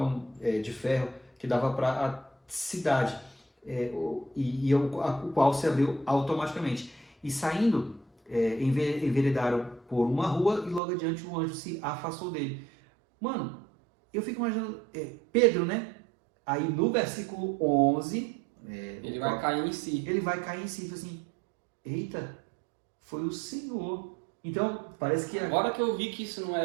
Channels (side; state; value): left; drops out; at 10.8 s